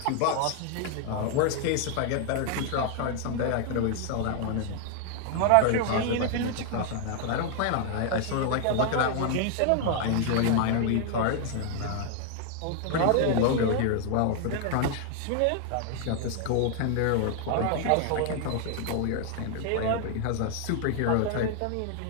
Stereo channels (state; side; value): different; both; correlation 0.00